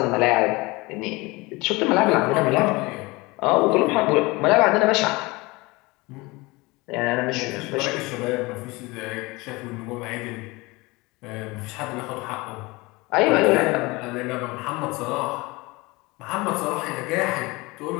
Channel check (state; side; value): quieter; right; 23.4 dB